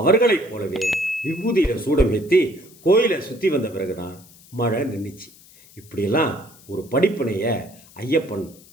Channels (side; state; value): left; noise; hiss, 24 dB below the sound